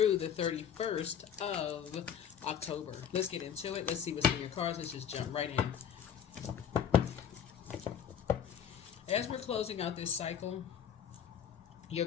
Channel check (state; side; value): quieter; right; 8.4 dB